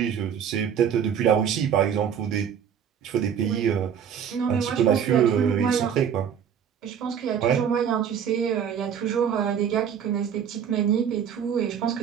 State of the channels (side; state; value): left; quieter; 8.1 dB